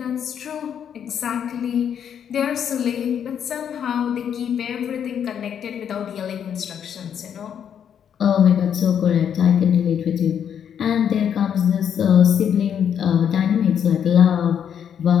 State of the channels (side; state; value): right; quieter; 8.5 dB